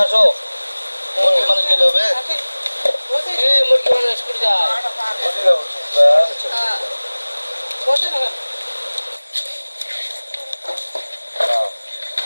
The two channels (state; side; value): inverted; both; correlation -1.00